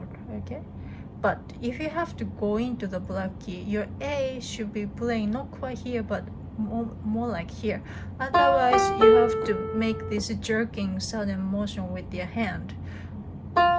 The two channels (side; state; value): both; identical; correlation 1.00